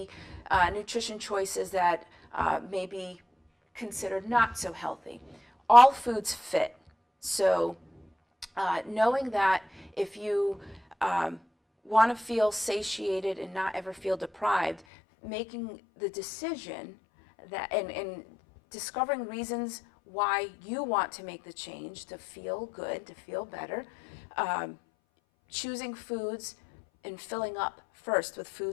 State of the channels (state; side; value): drops out; right; at 14.8 s